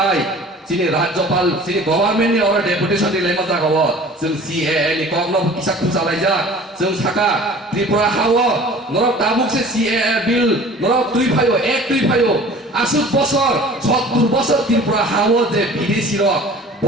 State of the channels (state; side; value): normal; both; correlation 0.45